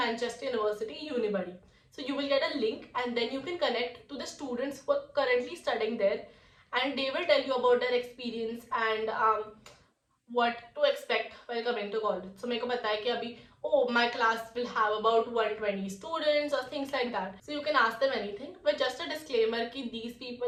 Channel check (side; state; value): both; identical; correlation 1.00